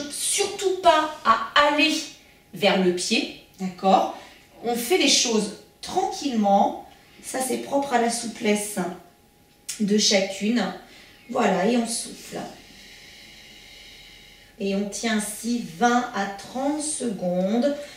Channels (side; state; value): both; identical; correlation 1.00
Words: surtout pas à aller vers le pied, d'accord? On fait les choses tranquillement, ça c'est propre à la souplesse de chacune. Voilà, et on souffle. Et on tient ainsi 20 à 30 secondes,